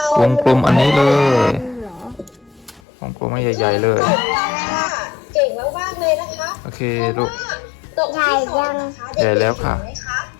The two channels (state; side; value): drops out; right; at 2.8 s